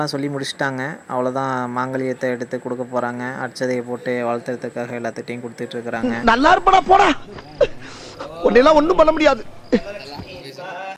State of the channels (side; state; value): both; identical; correlation 1.00